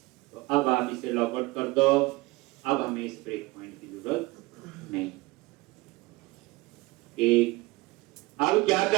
तो अब आप इसे लॉग आउट कर दो। अब हमें इस ब्रेक पॉइंट की जरूरत नहीं। एक अब क्या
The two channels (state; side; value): quieter; left; 21.7 dB